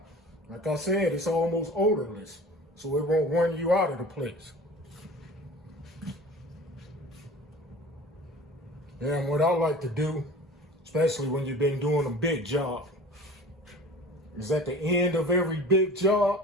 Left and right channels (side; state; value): both; normal; correlation 0.40